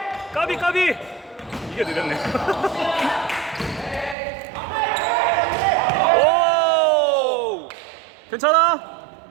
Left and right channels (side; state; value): left; drops out; at 4.2 s